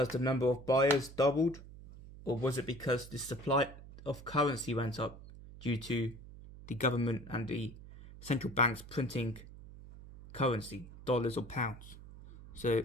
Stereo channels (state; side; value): noise; right; hum, 16 dB below the sound